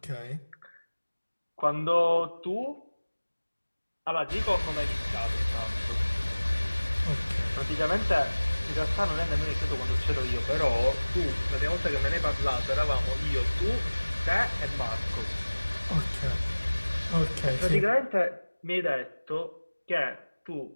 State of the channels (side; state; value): both; inverted; correlation -1.00